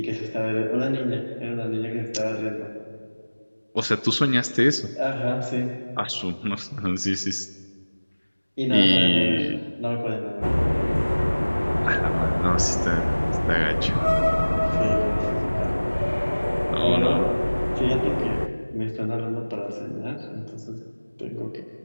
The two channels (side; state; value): both; inverted; correlation -1.00